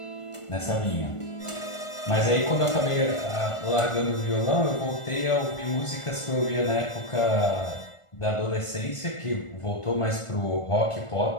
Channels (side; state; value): right; late; 1.4 ms